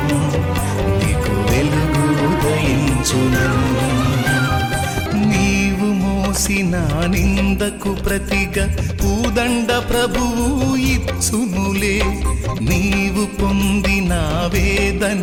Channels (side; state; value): both; identical; correlation 1.00